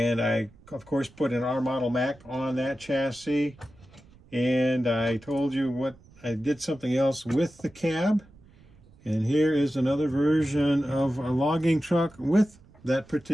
I of course put an R model Mac on that chassis. And I told you what I did something else with the cab, and here is another version of a logging truck with that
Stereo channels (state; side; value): noise; right; rumble, 26 dB below the sound